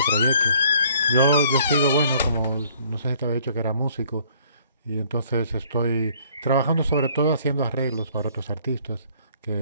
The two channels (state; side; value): inverted; both; correlation -0.59